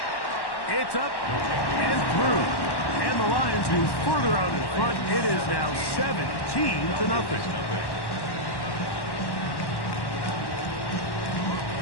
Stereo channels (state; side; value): late; right; 1.1 ms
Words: It's up and through. And the Lions move further out in front. It is now 17-0.